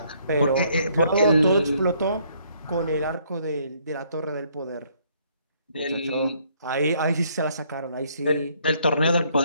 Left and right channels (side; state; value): both; inverted; correlation -0.67